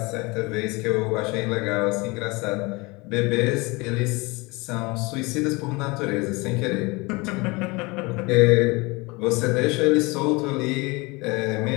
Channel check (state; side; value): quieter; right; 25.4 dB